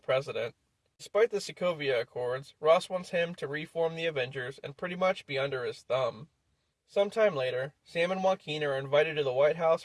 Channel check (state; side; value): identical; both; correlation 1.00